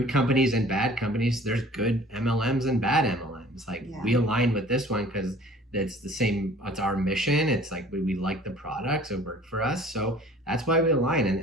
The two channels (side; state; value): both; normal; correlation 0.49